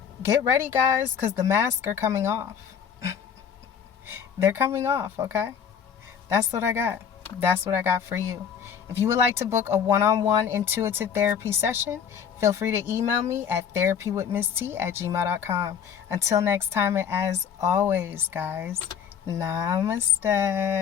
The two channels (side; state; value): right; quieter; 7.7 dB